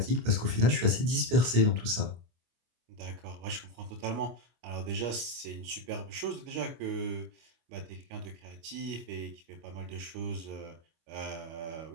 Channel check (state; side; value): late; left; 25 ms